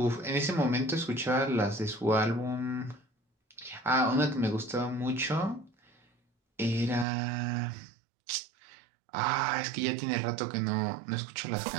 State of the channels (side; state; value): left; drops out; at 7.1 s